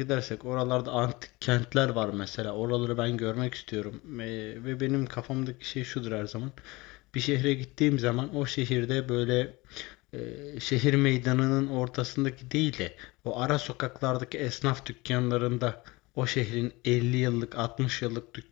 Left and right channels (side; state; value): right; quieter; 22.9 dB